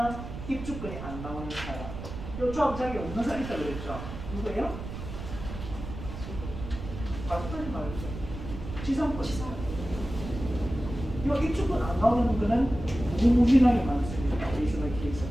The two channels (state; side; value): noise; right; rumble, 9 dB below the sound